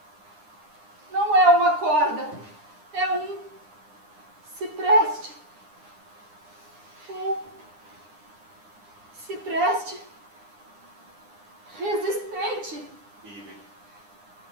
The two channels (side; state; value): left; late; 9.8 ms